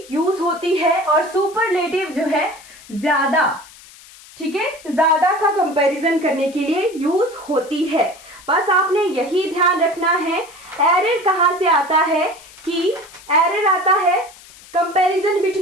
यूज होती है। और सुपरलेटिव जो है ज्यादा, ठीक है, ज्यादा का कंपैरिजन करने के लिए यूज होती है। बस आपने यही ध्यान रखना है। एरर कहां से आता है कि एरर आता है कंपैरिजन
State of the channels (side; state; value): left; noise; hiss, 21 dB below the sound